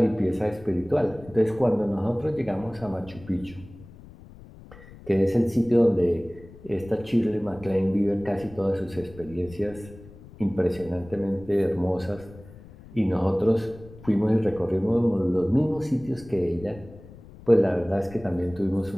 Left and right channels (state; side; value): noise; left; rumble, 19 dB below the sound